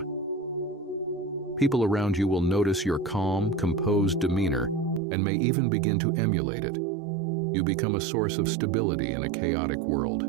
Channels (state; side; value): drops out; left; at 5.0 s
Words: People around you will notice your calm, composed demeanor and may even begin to emulate it. You become a source of stability in a chaotic world.